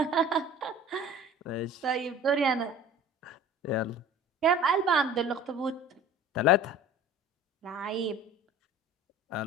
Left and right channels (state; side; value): normal; both; correlation 0.43